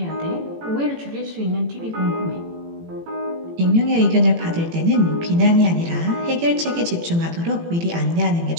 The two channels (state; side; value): late; left; 18 ms